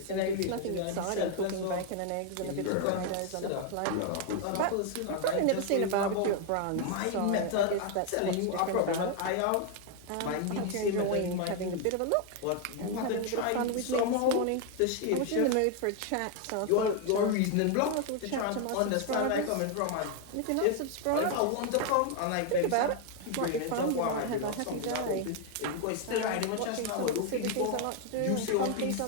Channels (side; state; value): both; different; correlation 0.01